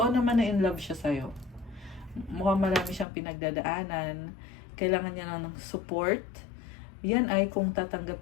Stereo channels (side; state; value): right; drops out; at 3.1 s